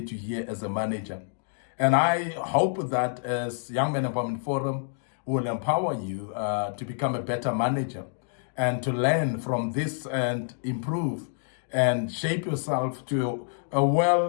to hear as a manager. And I hope that as Young Men Empowerment Forum will empower you to become a better manager and to learn from this and improve and shape yourself to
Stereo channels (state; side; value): silent; right; digital silence